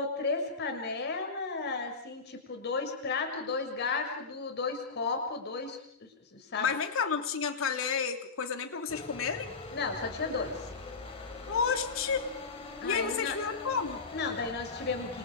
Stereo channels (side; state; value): right; quieter; 4.6 dB